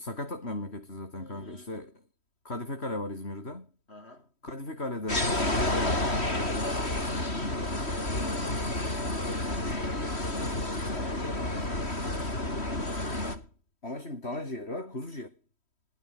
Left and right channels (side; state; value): right; late; 3.1 ms